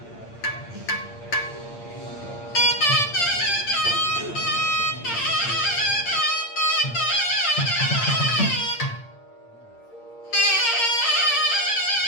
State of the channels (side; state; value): right; late; 8.7 ms